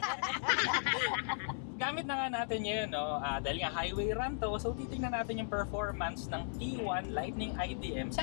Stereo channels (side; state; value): right; silent; 53 dB below the other